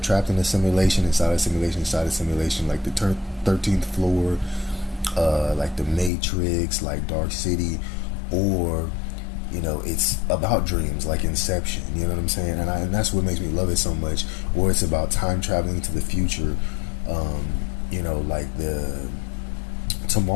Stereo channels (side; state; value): right; drops out; at 6.1 s